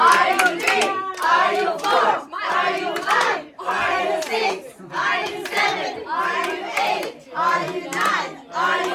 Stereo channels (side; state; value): both; identical; correlation 1.00